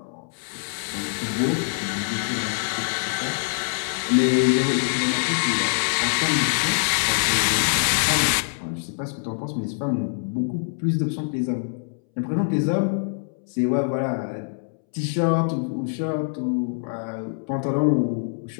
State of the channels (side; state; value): right; silent; 62 dB below the other